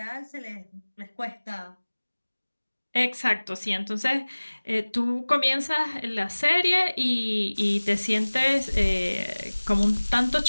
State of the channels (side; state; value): both; inverted; correlation -1.00